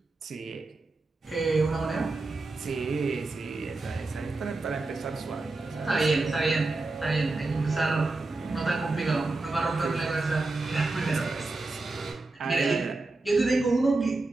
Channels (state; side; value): quieter; left; 3.3 dB